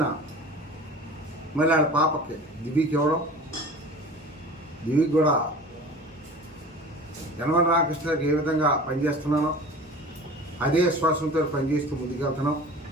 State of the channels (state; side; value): normal; both; correlation 0.39